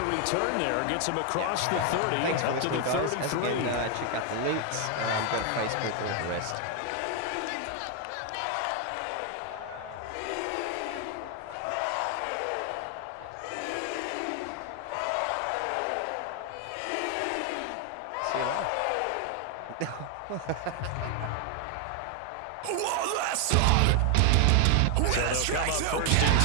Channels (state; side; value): different; both; correlation 0.00